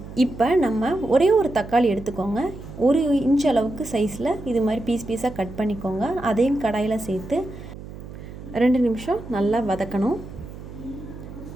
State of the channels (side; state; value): right; noise; hum, 13 dB below the sound